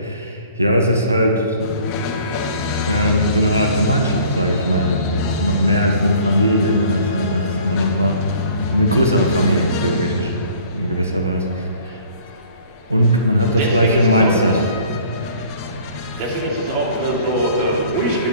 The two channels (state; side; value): inverted; both; correlation -0.52